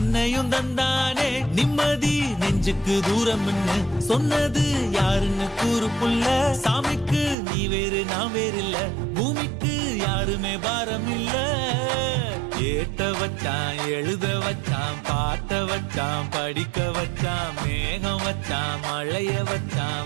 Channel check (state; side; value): drops out; left; at 7.4 s